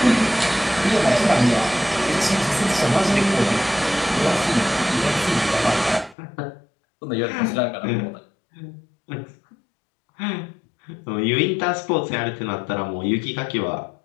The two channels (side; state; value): right; drops out; at 6.2 s